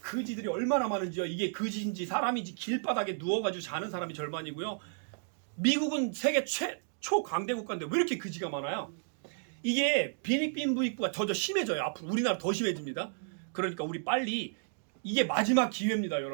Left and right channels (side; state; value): left; silent; digital silence